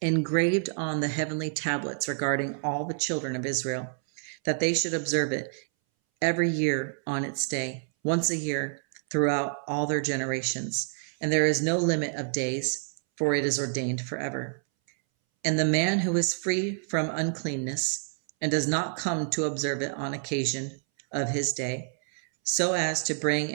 engraved on the heavenly tablets regarding all the children of Israel, that they should observe it every year on its day, once a year, throughout all their generations. And there is no limit of days, for it is ordained forever. And the man who is free from uncleanness, and does not come to observe it on occasion of his day, so as to bring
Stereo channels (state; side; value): silent; left; 59 dB below the other